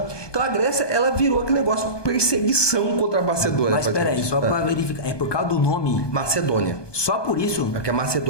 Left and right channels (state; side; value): late; right; 1.2 ms